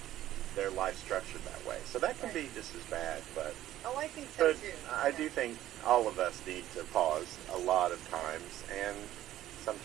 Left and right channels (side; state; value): left; quieter; 13.5 dB